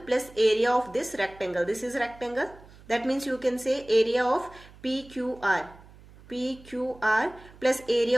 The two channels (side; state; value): right; noise; hum, 22 dB below the sound